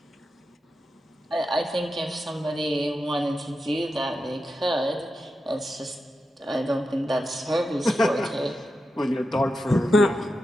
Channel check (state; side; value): normal; both; correlation 0.89